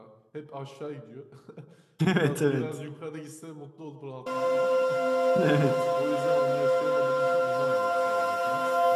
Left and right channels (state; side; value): identical; both; correlation 1.00